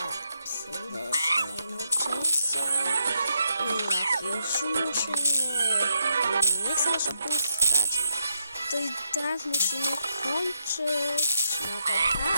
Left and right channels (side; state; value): both; inverted; correlation -0.82